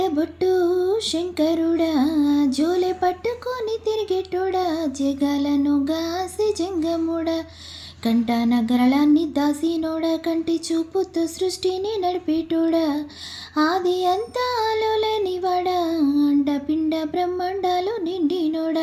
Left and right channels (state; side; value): identical; both; correlation 1.00